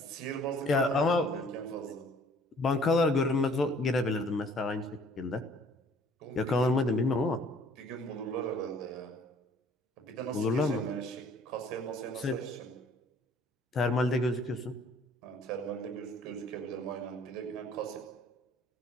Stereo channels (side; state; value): both; normal; correlation 0.56